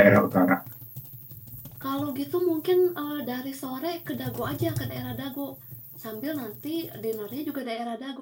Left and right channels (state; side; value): identical; both; correlation 1.00